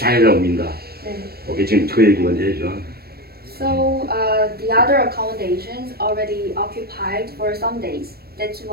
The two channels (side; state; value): left; late; 0.45 ms